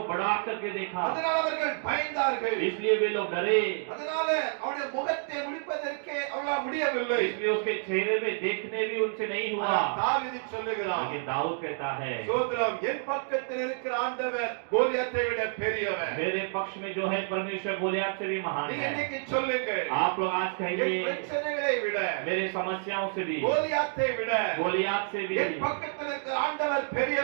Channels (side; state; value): left; silent; digital silence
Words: बड़ा करके देखा, அதனால அவர்கள் பயந்தார்கள். इसलिए वे लोग डरे। அதனால அவருடைய முகத்தை முடிப்பதற்கே அவர்களால் முடியவில்லை. इसलिए उसके चेहरे में देखने भी उनसे नहीं हुआ। தாவீது சொல்லுகிறார், लेकिन दाऊद कहता है, சோத்ரம் என் பக்கத்தில் இருக்கிற ஆண்டவர் கோலியாத்தை விட பெரியவர். मेरे पक्ष में जो है परमेश्वर गोलियत से भी महान நீங்க है। இன்னைக்கு சொல்லுங்க, आप लोग आज என் कहिए, பிரச்சனைகளை விட मेरे समस्याओं से भी, கோலியாத்தை விட गोलियत से भी என் பக்கத்தில் இருக்கிற ஆண்டவர்